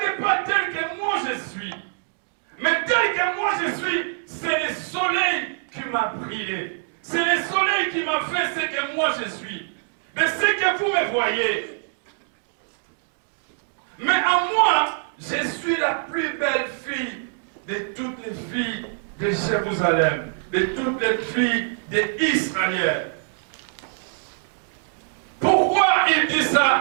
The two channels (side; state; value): left; silent; digital silence